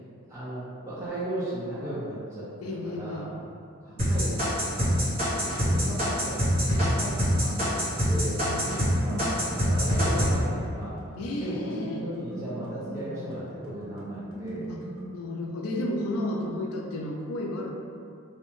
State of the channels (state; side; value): normal; both; correlation 0.65